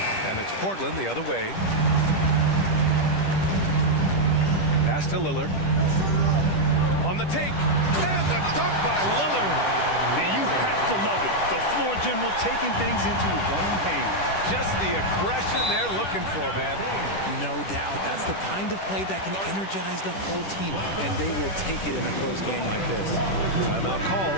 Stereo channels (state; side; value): late; right; 10 ms